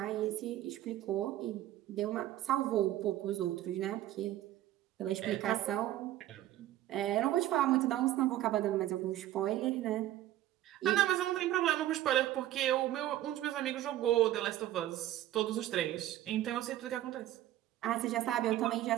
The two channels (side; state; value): left; quieter; 13.7 dB